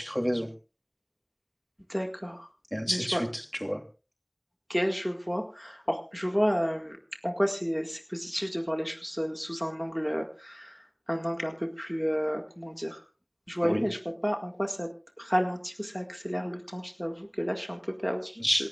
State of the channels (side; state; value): both; identical; correlation 1.00